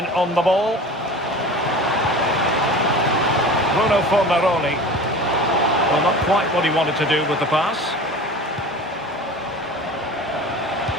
on the ball. Bruno Fornaroli. Well, not quite what he wanted to do with the pass.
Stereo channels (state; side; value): normal; both; correlation 0.37